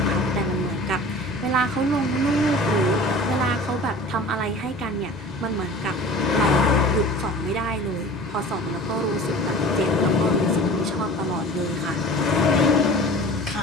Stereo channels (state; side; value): normal; both; correlation 0.41